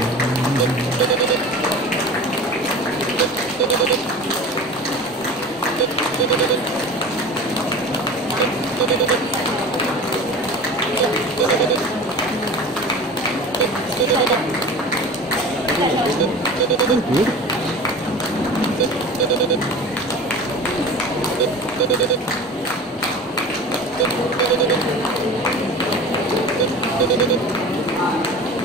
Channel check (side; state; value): both; normal; correlation 0.36